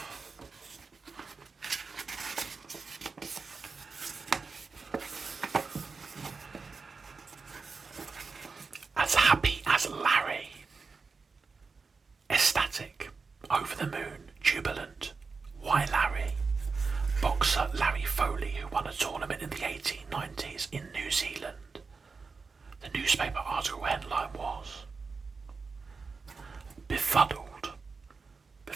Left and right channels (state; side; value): quieter; left; 4.6 dB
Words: As happy as Larry. Ecstatic, over the moon, jubilant. Why Larry? Boxer Larry Foley, who won a tournament in the 1890s in New Zealand. The newspaper article headline was Befuddled.